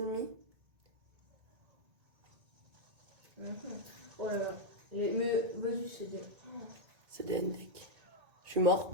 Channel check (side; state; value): left; late; 1.8 ms